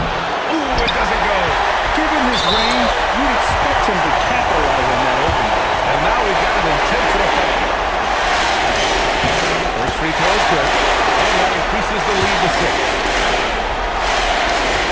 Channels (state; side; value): identical; both; correlation 1.00